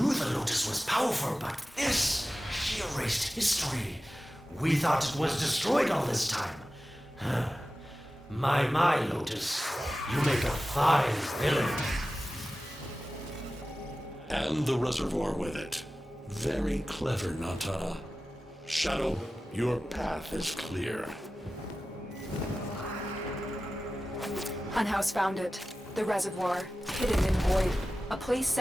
the Lotus was powerful, but this, she erased history. We thought it was destroyed all this time. My Lotus, you make a fine villain. And the reservoir with it. Very clever, Nata. Shadow, your path is clear. Unhouse found it. The reservoir, hidden in void. A place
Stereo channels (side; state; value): both; normal; correlation 0.95